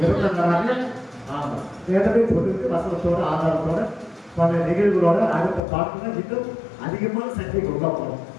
பிறந்த நாளாக ஆமா ஏற்கனவே சொல்லிருக்கு வசனத்தோட ஆதாரத்தோட பல நிகழ்வுகளோட அடுத்த பார்க்கணும் இன்னும் அதிகமான சக்திக்கு உள்ள போகணும்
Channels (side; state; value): right; drops out; at 5.6 s